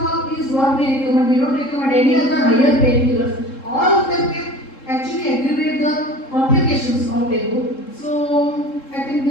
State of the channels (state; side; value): late; right; 3.7 ms